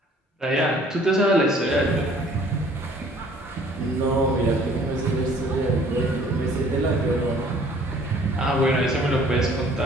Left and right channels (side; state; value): both; normal; correlation 0.55